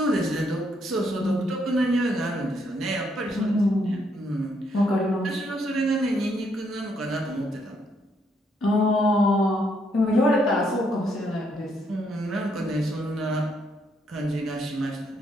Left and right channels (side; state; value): both; normal; correlation 0.73